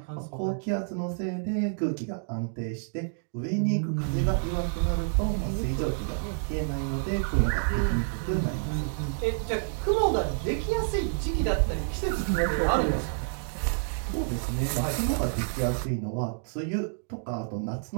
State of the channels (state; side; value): silent; left; digital silence